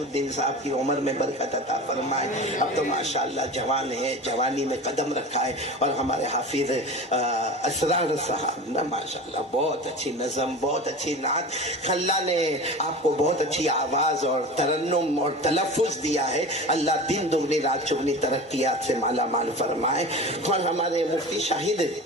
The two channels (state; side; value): normal; both; correlation 0.33